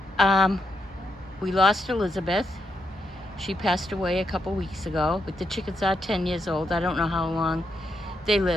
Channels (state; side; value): normal; both; correlation 0.81